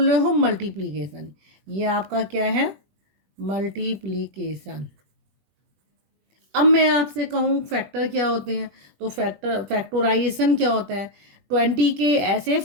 रहे हो मल्टीप्लिकेशन। ये आपका क्या है? मल्टीप्लिकेशन। अब मैं आपसे कहूँ फैक्टर क्या होते हैं, तो फैक्टराइजेशन क्या होता है? 20 के ऐसे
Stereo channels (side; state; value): left; late; 21 ms